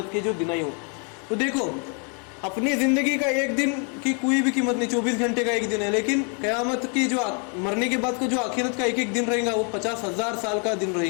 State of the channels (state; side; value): quieter; right; 38.8 dB